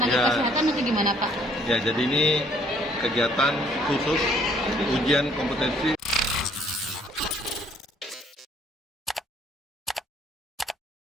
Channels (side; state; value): both; normal; correlation 0.62